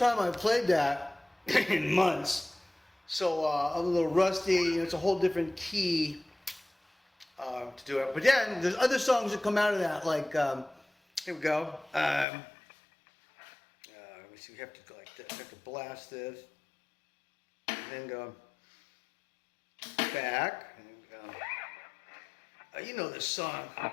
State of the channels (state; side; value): drops out; right; at 12.2 s